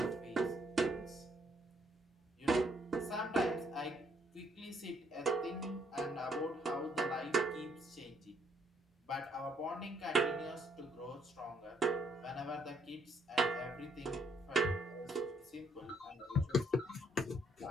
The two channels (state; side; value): normal; both; correlation 0.69